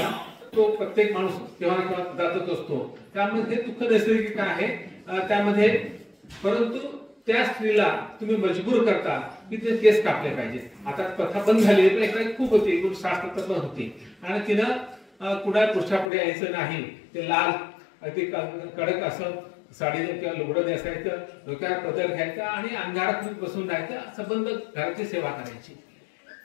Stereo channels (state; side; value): drops out; right; at 16.1 s